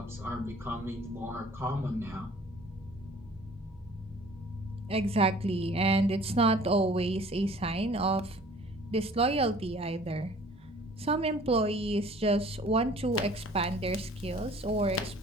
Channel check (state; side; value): normal; both; correlation 0.51